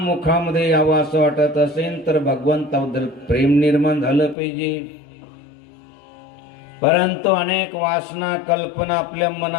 मुखामध्ये यावं असं वाटत असेल तर भगवंताबद्दल प्रेम निर्माण झालं पाहिजे. परंतु अनेक वासना कल्पना आपल्या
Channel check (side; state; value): right; drops out; at 4.4 s